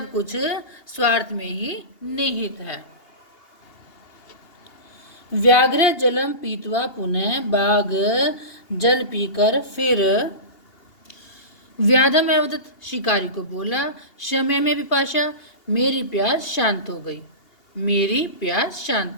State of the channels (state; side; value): late; right; 2.8 ms